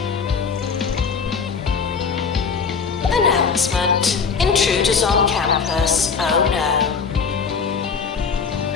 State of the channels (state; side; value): quieter; right; 5.7 dB